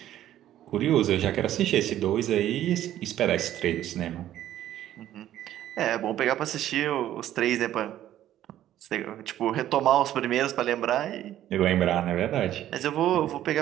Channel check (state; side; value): quieter; left; 12.4 dB